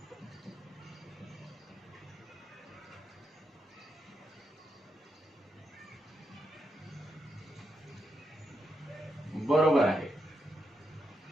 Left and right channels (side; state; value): both; normal; correlation 0.83